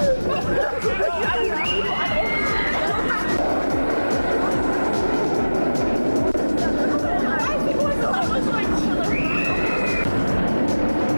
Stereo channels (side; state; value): both; inverted; correlation -1.00